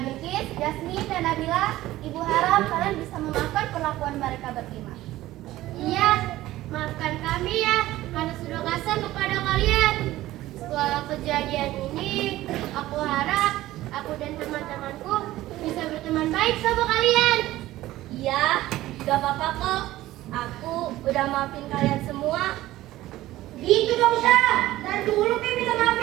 Jasmine, dan Nabila, Ibu harap kalian bisa memaafkan perlakuan mereka berlima. Iya, maafkan kami ya, karena sudah kasar kepada kalian. Setelah kejadian ini, aku harap aku dan teman-temanku bisa berteman baik sama kalian. Iya, gak apa-apa kok. Aku udah maafin kalian semua. Gitu dong, Syah. Dan dulu minta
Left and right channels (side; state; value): left; quieter; 15.9 dB